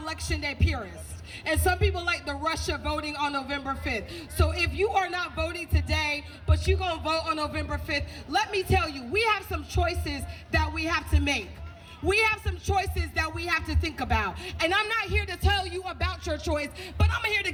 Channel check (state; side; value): identical; both; correlation 1.00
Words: day purists. And some people like the rush of voting on November 5th. So if you are not voting today, but you're going to vote on November 5th, let me tell you, we have some choices that we have to make. We have some choices that we have to think about. And I'm not here to tell you about your choice, but I'm here to